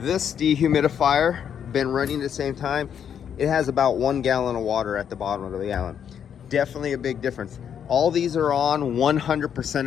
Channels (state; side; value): quieter; right; 8.4 dB